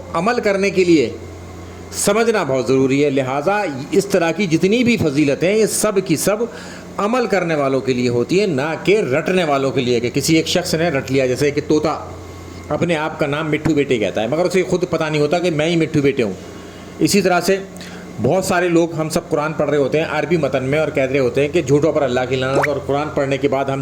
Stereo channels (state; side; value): noise; right; hum, 28 dB below the sound